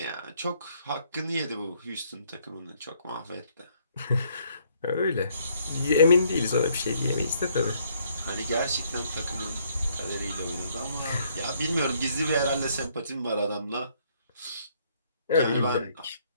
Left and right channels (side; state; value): both; inverted; correlation -0.67